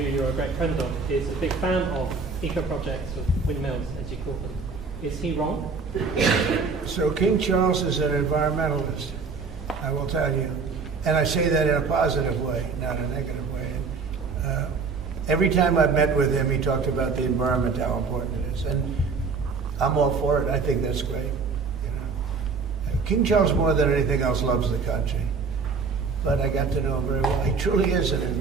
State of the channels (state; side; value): quieter; left; 4.8 dB